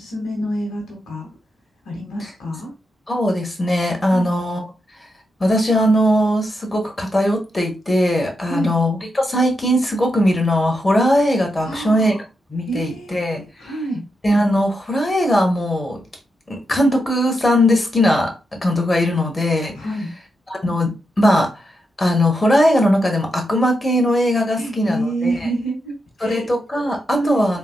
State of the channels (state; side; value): normal; both; correlation 0.85